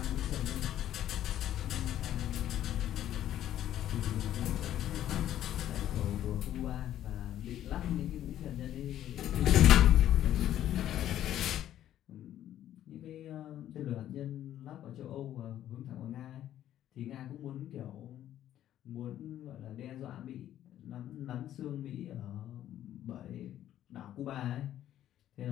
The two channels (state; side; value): quieter; right; 11.9 dB